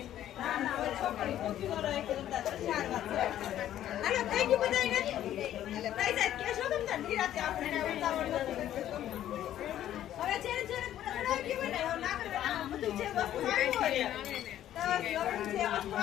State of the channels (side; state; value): right; quieter; 11.9 dB